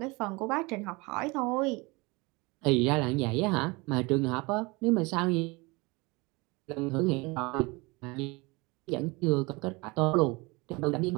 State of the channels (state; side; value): quieter; left; 25.5 dB